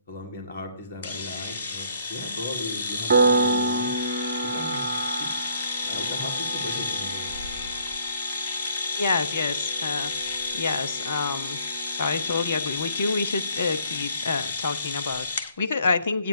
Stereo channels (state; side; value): inverted; both; correlation -0.66